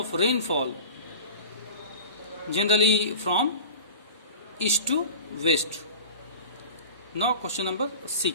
rainfall, generally from east to west. Now question number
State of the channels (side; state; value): both; inverted; correlation -0.36